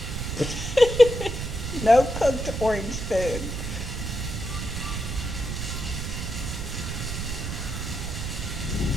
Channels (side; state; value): right; noise; rumble, 4 dB below the sound